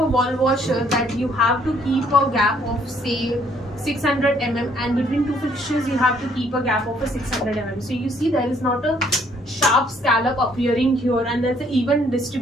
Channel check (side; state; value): both; normal; correlation 0.65